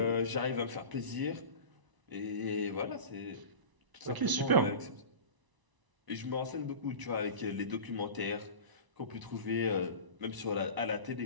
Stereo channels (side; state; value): left; late; 1.0 ms